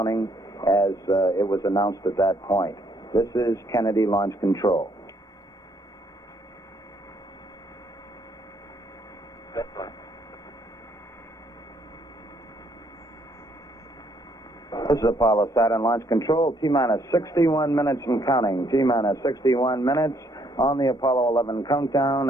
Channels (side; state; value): both; normal; correlation 0.69